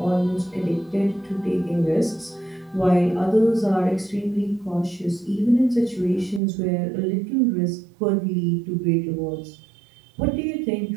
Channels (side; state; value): left; drops out; at 6.4 s